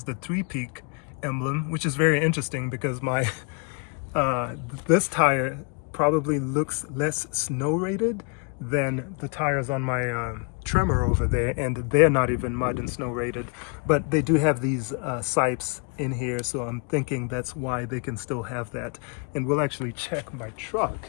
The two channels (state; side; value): quieter; right; 34.3 dB